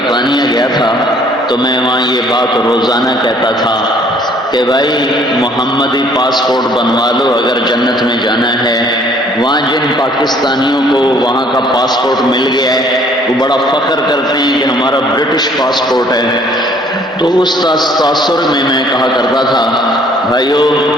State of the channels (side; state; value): both; normal; correlation 0.59